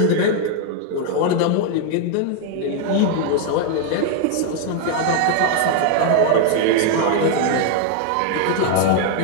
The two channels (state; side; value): different; both; correlation 0.00